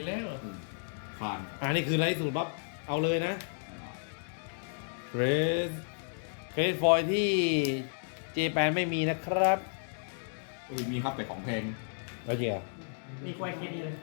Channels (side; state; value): right; silent; digital silence